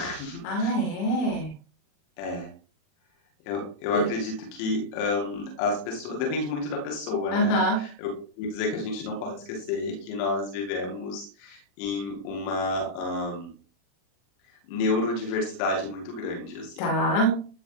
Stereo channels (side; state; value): right; late; 40 ms